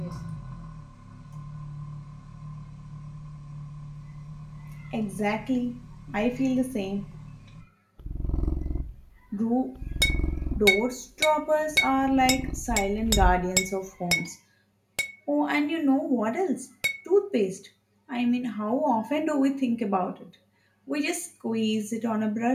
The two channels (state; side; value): identical; both; correlation 1.00